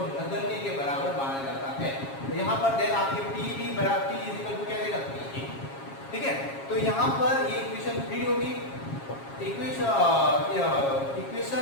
नगण्य के बराबर माना जाता है। तो यहाँ पर देन आपके पी बी बराबर पी इज इक्वल टू क्या रहेगा पी ए, ठीक है। तो यहाँ पर ये इक्वेशन 3 होगी।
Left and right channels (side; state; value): right; late; 7.3 ms